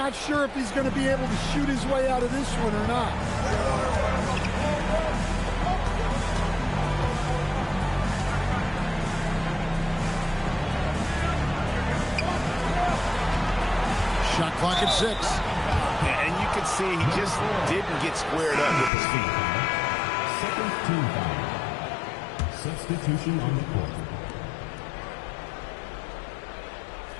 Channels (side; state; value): right; drops out; at 18.9 s